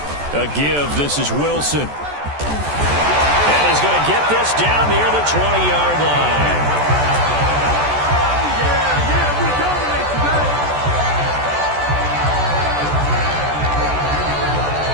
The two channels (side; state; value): left; late; 14 ms